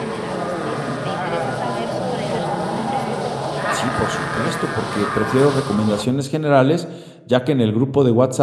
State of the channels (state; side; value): identical; both; correlation 1.00